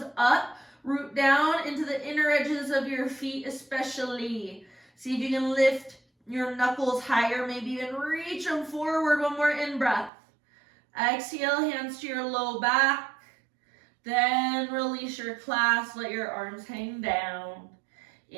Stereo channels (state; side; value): drops out; left; at 10.1 s